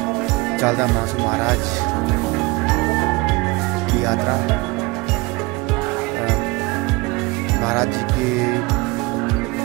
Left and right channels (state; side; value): quieter; left; 24.2 dB